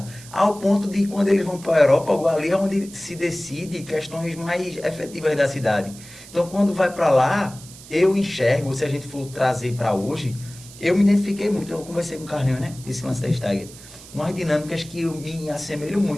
Ao ponto de, quando eles vão para a Areópago, ali é onde se decide questões mais efetivas da cidade. Então, quando vai para lá, eu enxergo, se a gente for trazer para hoje, eu me identifiquei muito, eu conversei com o Carlinhos, né, esse lance da Stagger, umas dinâmicas que eu me assemelho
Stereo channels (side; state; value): right; noise; hiss, 18 dB below the sound